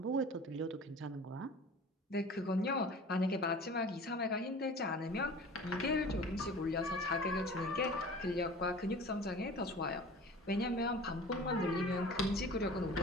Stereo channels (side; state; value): both; normal; correlation 0.41